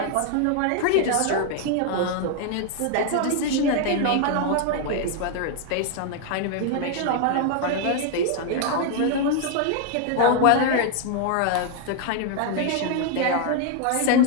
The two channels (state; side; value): different; both; correlation 0.00